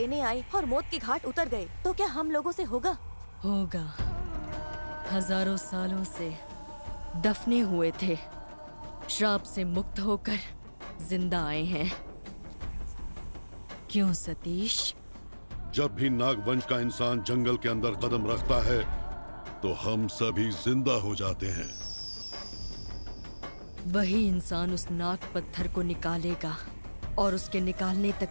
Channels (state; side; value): inverted; both; correlation -1.00